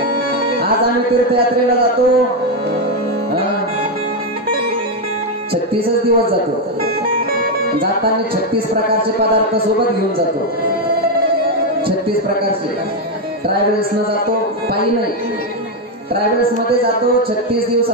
आज आम्ही तीर्थयात्रेला जातो 36 दिवस जातो. जाताना 36 प्रकारचे पदार्थ सोबत घेऊन जातो. 36 प्रकारचे. ट्रॅव्हल्स न जातो, पायी नाही, ट्रॅव्हल्स मध्ये जातो. 36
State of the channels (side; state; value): both; normal; correlation 0.05